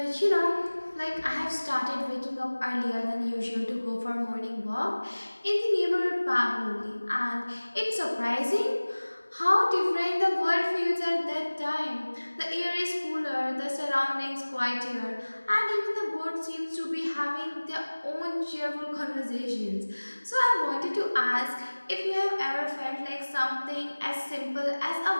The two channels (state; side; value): inverted; both; correlation -1.00